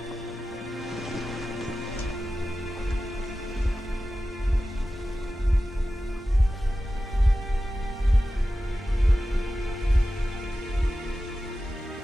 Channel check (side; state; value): both; normal; correlation 0.94